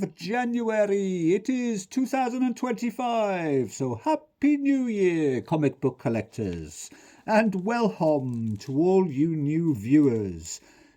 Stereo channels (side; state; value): both; identical; correlation 1.00